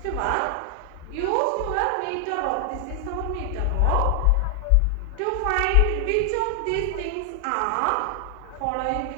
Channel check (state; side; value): different; both; correlation 0.00